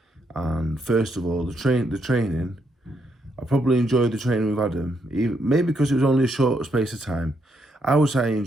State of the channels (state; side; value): normal; both; correlation 0.77